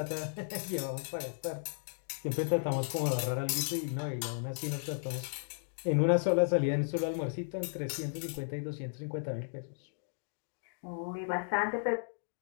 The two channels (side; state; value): right; silent; digital silence